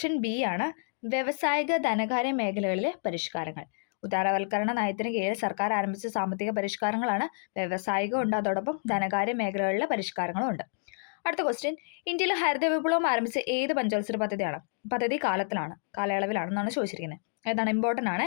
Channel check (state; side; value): silent; right; digital silence